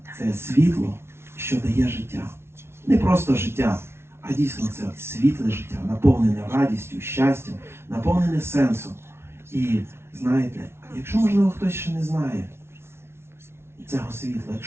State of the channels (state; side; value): late; left; 0.12 ms